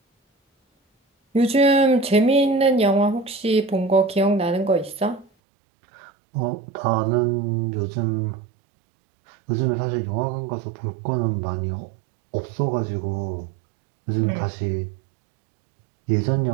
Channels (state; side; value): drops out; left; at 5.2 s